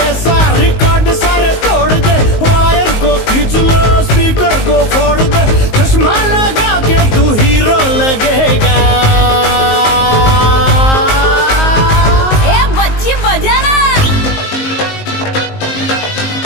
रिकॉर्ड सारे तोड़ दे वायर को खींच लो स्पीकर को फोड़ दे चश्मा लगा के तू हीरो लगेगा ए बच्ची बजाना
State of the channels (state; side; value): late; right; 19 ms